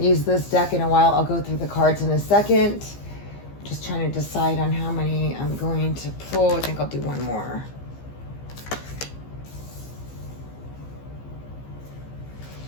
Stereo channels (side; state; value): right; late; 15 ms